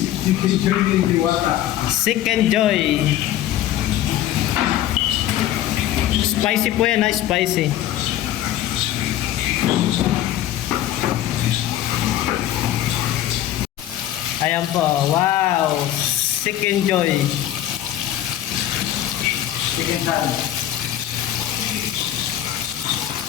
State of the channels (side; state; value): right; quieter; 12.5 dB